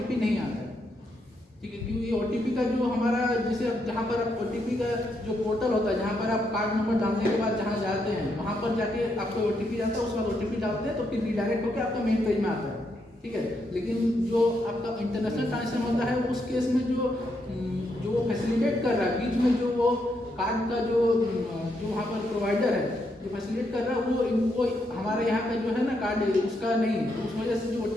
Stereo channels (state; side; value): normal; both; correlation 0.79